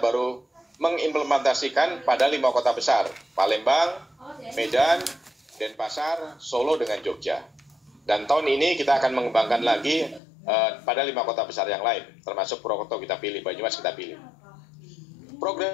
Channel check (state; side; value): drops out; right; at 10.2 s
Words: mengimplementasikan pada 5 kota besar, Palembang, Medan, Denpasar, Solo dengan Jogja. Dan tahun ini kita akan mengembangkan lagi pada 5 kota besar yang lain, termasuk Purwokerto kita pilih, Banyumas kita pilih. Program